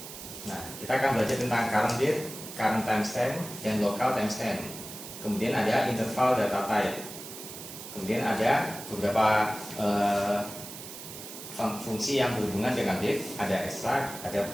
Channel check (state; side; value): noise; right; hiss, 12 dB below the sound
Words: Nah, kita akan belajar tentang current date, current timestamp, dan local timestamp. Kemudian ada interval data type. Kemudian ada beberapa fungsi yang berhubungan dengan date, ada extract, ada